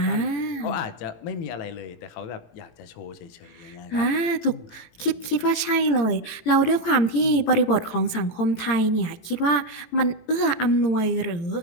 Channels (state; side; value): late; right; 18 ms